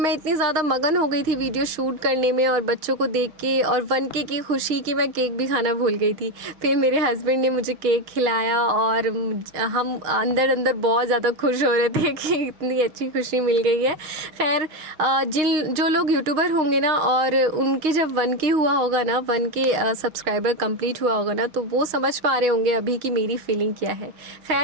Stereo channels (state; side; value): late; left; 6.4 ms